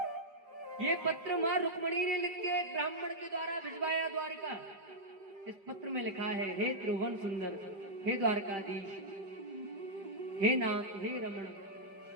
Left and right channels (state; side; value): late; left; 5.1 ms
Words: ये पत्र मां रुक्मणी ने लिख के ब्राह्मण के द्वारा भिजवाया द्वारका। इस पत्र में लिखा है, हे त्रिभुवन सुंदर, हे द्वारकाधीश, हे नाथ, हे रमण,